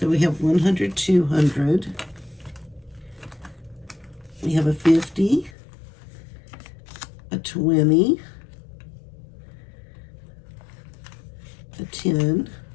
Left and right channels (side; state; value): right; drops out; at 5.5 s